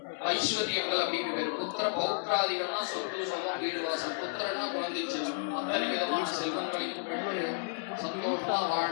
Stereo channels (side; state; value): right; silent; 56 dB below the other